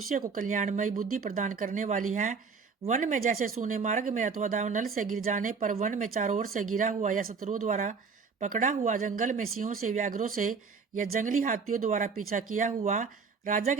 को कल्याणमयी बुद्धि प्रदान करने वाली है। वन में जैसे सूने मार्ग में अथवा दावनल से गिर जाने पर वन में चारों ओर से गिरा हुआ या शत्रुओं द्वारा पकड़ा हुआ, जंगल में सिंहों से, व्याघ्रों से या जंगली हाथियों द्वारा पीछा किया हुआ, राजा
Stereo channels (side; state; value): left; quieter; 5.2 dB